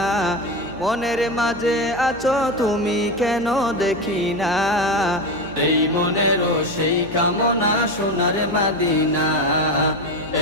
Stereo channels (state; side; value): noise; left; hum, 19 dB below the sound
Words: মনের মাঝে আছো তুমি কেন দেখি না। এই মনেরও সেই কামনা সোনার মাদিনা,